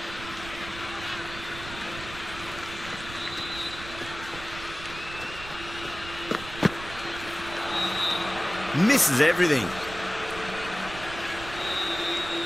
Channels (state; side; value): noise; right; rumble, 13 dB below the sound